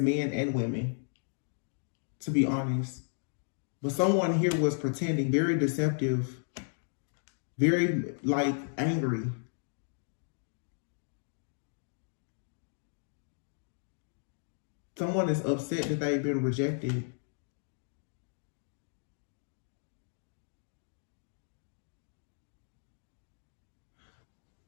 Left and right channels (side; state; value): right; silent; digital silence